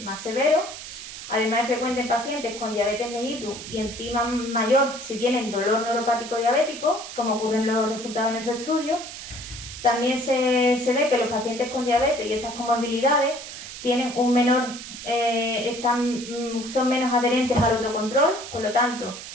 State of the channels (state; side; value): noise; right; hiss, 11 dB below the sound